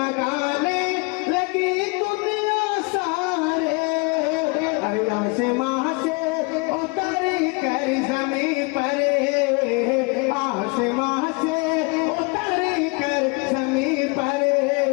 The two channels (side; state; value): right; quieter; 29.6 dB